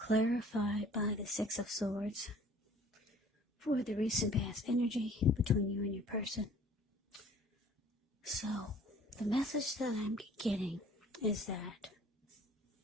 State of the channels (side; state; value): both; normal; correlation 0.52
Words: by the Six of Swords for the recent past energy between you and your person. So, the message that I'm getting is that,